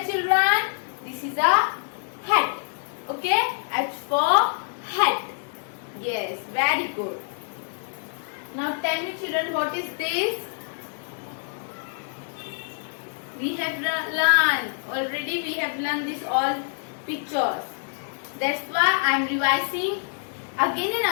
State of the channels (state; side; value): silent; right; digital silence